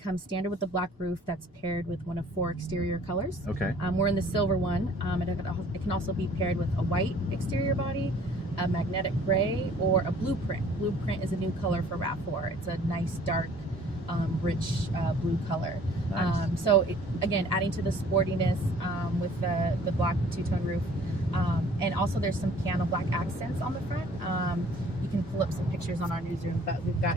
standard with the black roof that's paired with one of 4 exterior colors. Okay. We're in the silver one. It can also be paired with a white exterior body, a magnetic gray, or a blueprint. Blueprint is a new color for RAV4. It's a nice dark, rich blue color. Nice. So again, adding to the sportiness with the black two-tone roof, and also there's some piano black accents on the front. You can pull up some pictures on our newsroom, but we've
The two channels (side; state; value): both; normal; correlation 0.54